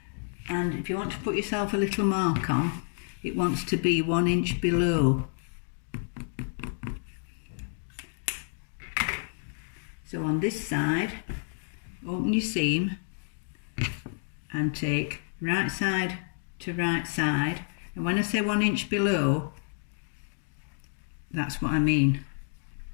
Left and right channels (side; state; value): right; silent; digital silence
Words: And if you want to put yourself a little mark on, it wants to be 1 inch below. So on this side, open your seam and take right side to right side. And when I say 1 inch below, that's what I mean.